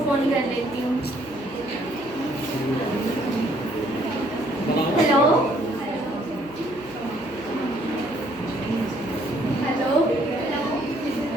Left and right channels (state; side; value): noise; right; hum, 21 dB below the sound